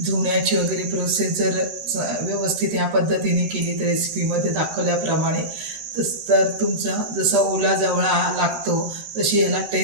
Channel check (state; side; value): late; left; 13 ms